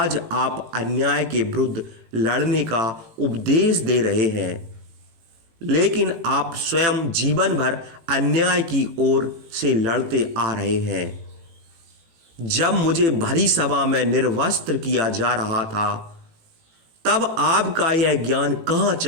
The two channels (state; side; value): late; left; 18 ms